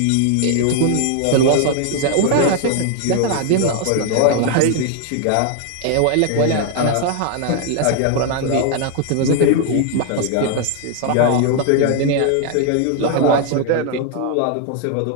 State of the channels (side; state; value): both; different; correlation 0.00